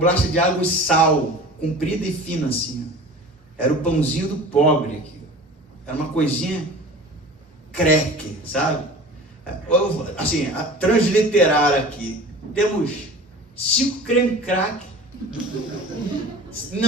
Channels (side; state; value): both; normal; correlation 0.40